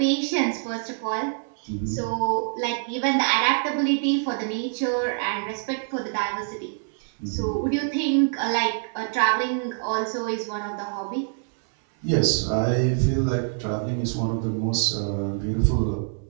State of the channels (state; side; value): silent; left; 61 dB below the other